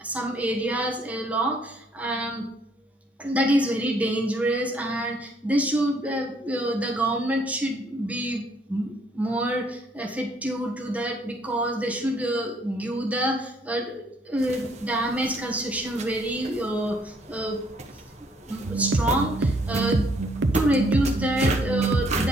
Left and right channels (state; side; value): normal; both; correlation 0.66